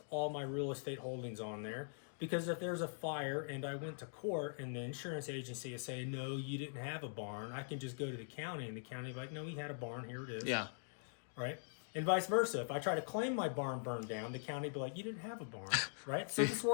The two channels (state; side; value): silent; right; digital silence